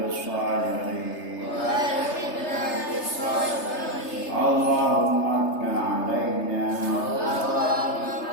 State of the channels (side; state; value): right; late; 3.3 ms